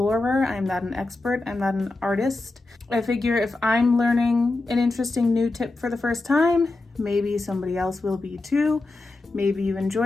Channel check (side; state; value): right; quieter; 3.1 dB